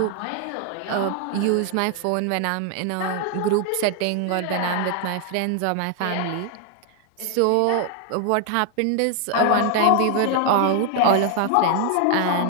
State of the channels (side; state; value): both; different; correlation 0.00